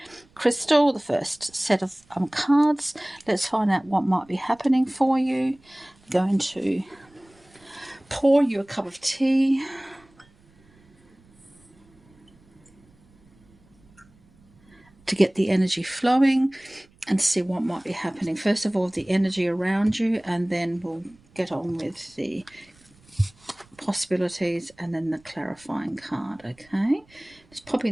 crystal, the first set of cards, let's find out what might be happening for you. I'm going to pour you a cup of tea. To get the energy flowing and see what might be happening. First of all, the energy around you, and then we'll get on with the possibilities and then the clarifying card. Okay, just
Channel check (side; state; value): right; noise; rumble, 30 dB below the sound